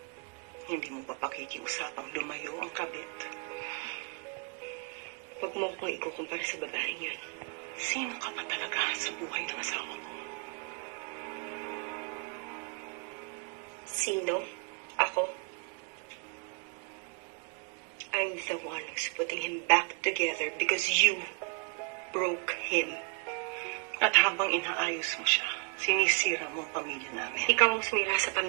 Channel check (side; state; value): left; quieter; 35.6 dB